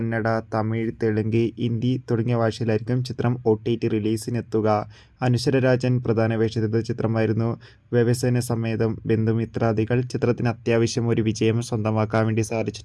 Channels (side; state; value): both; identical; correlation 1.00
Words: തമിഴ്, തെലുങ്ക്, ഹിന്ദി തുടങ്ങിയ ഭാഷയിലായിരിക്കും ചിത്രം OTT റിലീസിനെത്തുക. അനശ്വര രാജൻ പ്രധാന വേഷത്തിലെത്തിയ ചിത്രമായിരുന്നു വ്യവസായ സമേതം ബന്ധുമിത്രാദികൾ. ചിത്രത്തിന് അത്യാവശ്യം ഒരു വിജയം സ്വന്തമാക്കാൻ വേണ്ടി